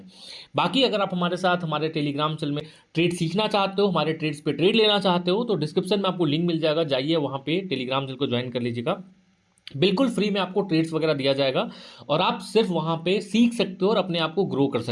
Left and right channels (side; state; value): both; identical; correlation 1.00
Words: बाकी अगर आप हमारे साथ हमारे टेलीग्राम चैनल में ट्रेड सीखना चाहते हो, हमारे ट्रेड्स पे ट्रेड लेना चाहते हो तो डिस्क्रिप्शन में आपको लिंक मिल जाएगा, जाइए वहाँ पे टेलीग्राम चैनल को ज्वाइन कर लीजिएगा। बिल्कुल फ्री में आपको ट्रेड्स वगैरह दिया जाएगा और आप सिर्फ वहाँ पे सीख सकते हो और अपने आप को ग्रो कर